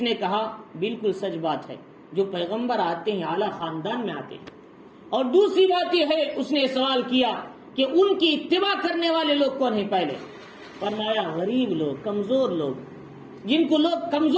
کہا بالکل سچ بات ہے، جو پیغمبر آتے ہیں اعلیٰ خاندان میں آتے ہیں۔ اور دوسری بات یہ ہے، اس نے سوال کیا کہ ان کی اتباع کرنے والے لوگ کون ہیں پہلے؟ فرمایا غریب لوگ، کمزور لوگ، جن کو لوگ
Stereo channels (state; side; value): identical; both; correlation 1.00